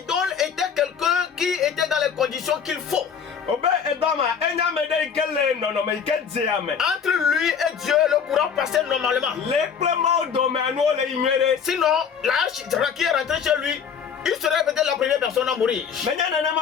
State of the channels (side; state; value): right; quieter; 6.9 dB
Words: était quelqu'un qui était dans les conditions qu'il faut. Obe edoma enya me de ikele no no me ike di ame. Entre lui et Dieu, le courant passait normalement. Le plema o do me anu o le inwere. Sinon, l'arche qui est rentré chez lui, il serait peut-être la première personne à mourir. Menya nene